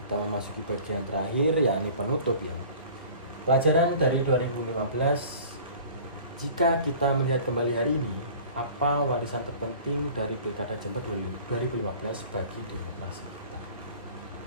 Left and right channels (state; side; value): inverted; both; correlation -0.45